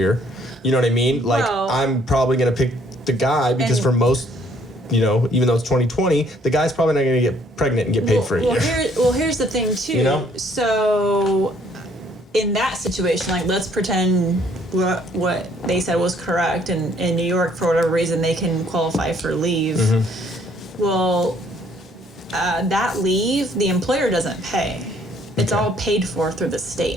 you know what I mean? Like, I'm probably going to pick the guy because for most, even though it's 2020, the guy's probably not going to get pregnant and get paid for a year. Here's the thing too. So in that situation, like, let's pretend what they said was correct, and in New York, for whatever reason, they can qualify for leave. Well, that leave, the employer doesn't pay. It's all paid for through the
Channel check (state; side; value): normal; both; correlation 0.64